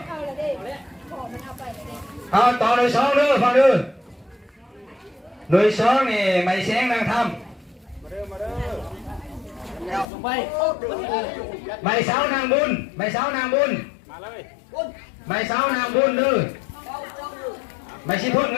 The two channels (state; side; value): drops out; right; at 10.1 s